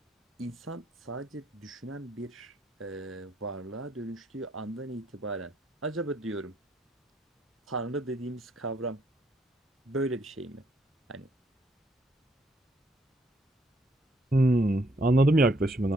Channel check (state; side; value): normal; both; correlation 0.71